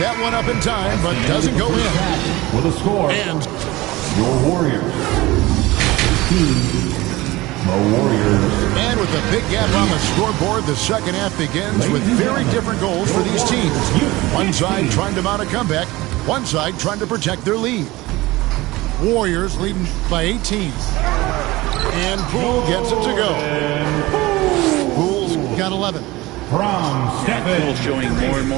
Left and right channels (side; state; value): left; quieter; 19.8 dB